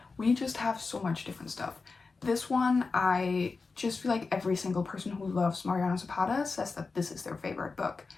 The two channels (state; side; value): quieter; right; 4.3 dB